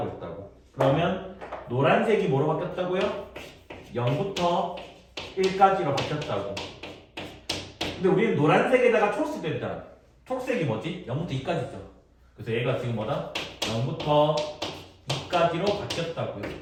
했다고. 그러면 노란색이 뭐로 바뀌었다고요? 0부터 1까지로 바뀌었다고. 근데 우리는 노란색에다가 초록색도 했잖아. 초록색이 뭐지? 0부터 2까지죠. 그래서 얘가 지금 뭐다? 0부터 2까지로 바뀌었다고요.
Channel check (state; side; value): identical; both; correlation 1.00